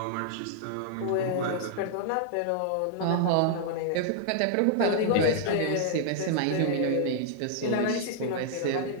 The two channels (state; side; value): different; both; correlation -0.01